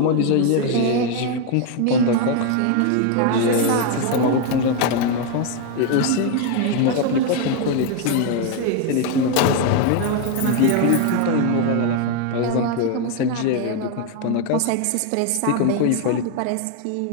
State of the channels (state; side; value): different; both; correlation 0.01